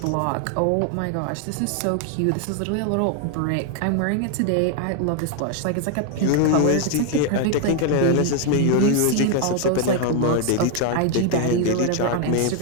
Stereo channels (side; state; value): both; different; correlation 0.01